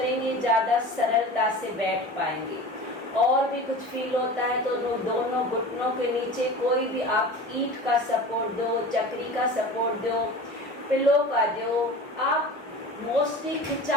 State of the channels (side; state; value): both; normal; correlation 0.36